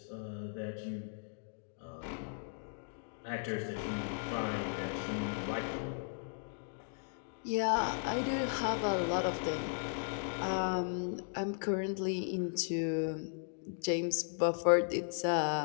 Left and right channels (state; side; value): silent; right; digital silence